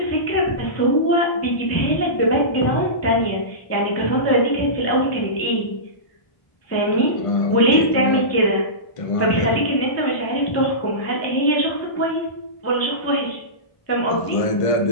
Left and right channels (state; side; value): late; right; 1.5 ms